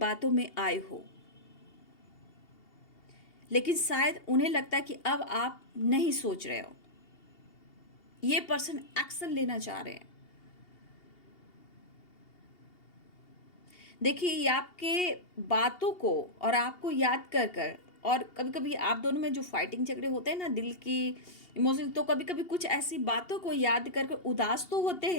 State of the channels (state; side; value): late; right; 2.8 ms